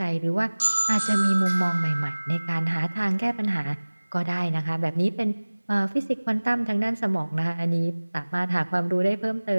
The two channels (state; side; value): inverted; both; correlation -1.00